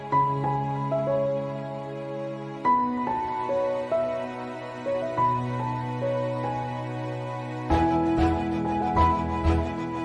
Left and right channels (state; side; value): identical; both; correlation 1.00